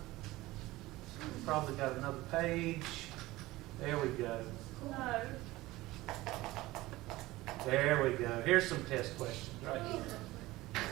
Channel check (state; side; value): quieter; left; 18.6 dB